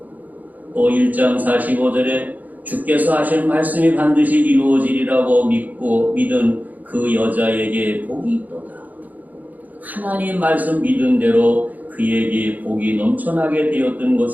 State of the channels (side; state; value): left; late; 0.080 ms